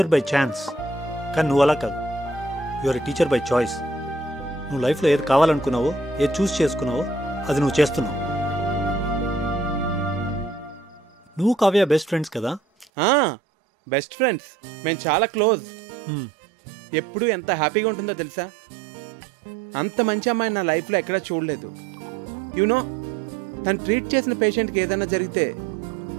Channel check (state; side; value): drops out; left; at 12.9 s